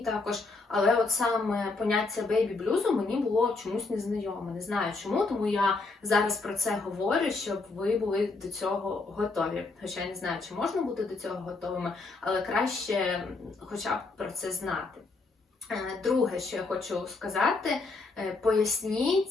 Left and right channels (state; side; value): quieter; right; 3.7 dB